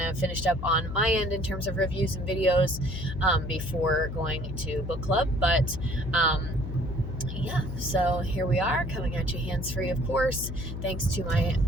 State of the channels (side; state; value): left; noise; hum, 6 dB below the sound